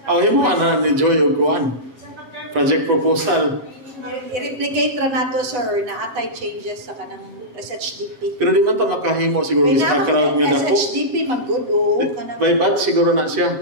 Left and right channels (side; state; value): left; late; 8.1 ms